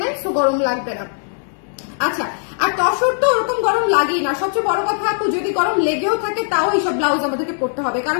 নাই, সো গরম লাগবে না। আচ্ছা, আর তসর তো ওরকম গরম লাগেই না। সবচেয়ে বড় কথা আপু, যদি গরম লেগেও থাকে তাও এইসব ব্লাউজ আমাদেরকে পরতে হবে,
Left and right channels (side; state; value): right; silent; digital silence